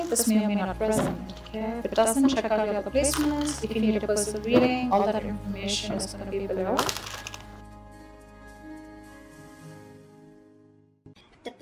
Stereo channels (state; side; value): identical; both; correlation 1.00